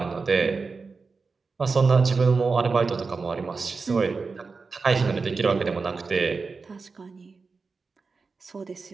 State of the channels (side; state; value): left; quieter; 4.5 dB